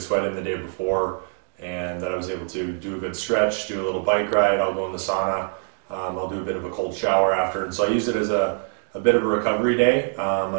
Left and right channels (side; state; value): left; silent; 63 dB below the other